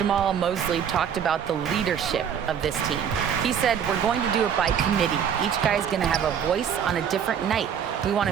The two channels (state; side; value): quieter; left; 8.1 dB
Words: Mosley talked about the leadership of this team. He said, we're going to do it by committee. Each guy's going to have a voice on a different night. We want